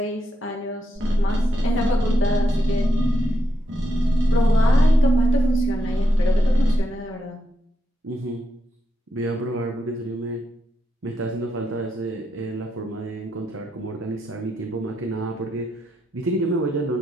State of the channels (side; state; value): both; normal; correlation 0.82